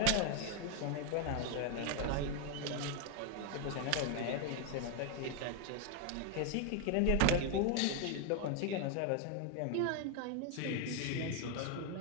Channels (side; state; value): both; different; correlation 0.01